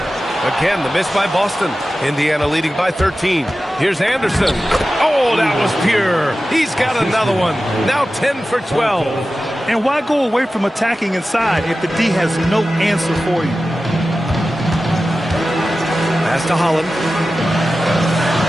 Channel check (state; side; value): normal; both; correlation 0.94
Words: Again, the miss by Boston. Indiana leading by 13. Here's Anderson. Oh, that was pure. He's got another one. Now 10 for 12. And why go away from attacking inside if the D has no answer for you? Pass to Holland.